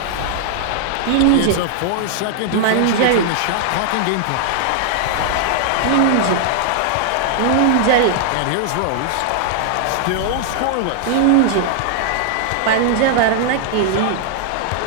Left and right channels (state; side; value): different; both; correlation 0.00